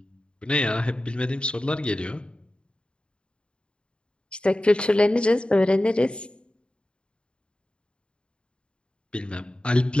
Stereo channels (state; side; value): late; right; 0.054 ms